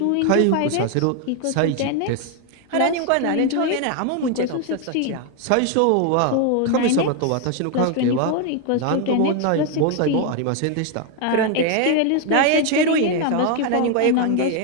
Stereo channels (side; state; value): both; different; correlation 0.01